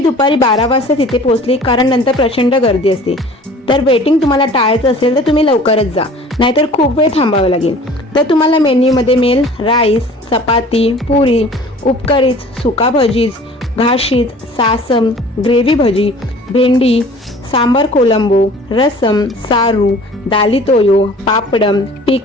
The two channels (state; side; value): normal; both; correlation 0.47